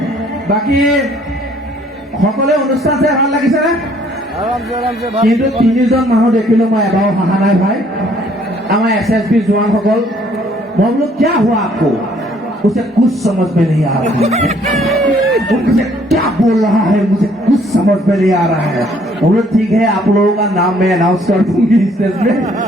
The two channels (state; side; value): normal; both; correlation 0.62